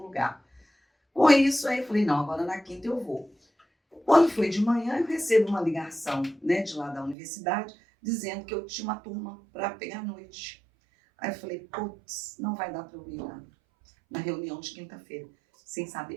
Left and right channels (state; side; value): drops out; left; at 7.2 s